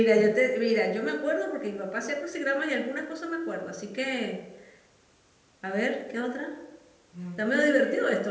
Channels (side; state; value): both; identical; correlation 1.00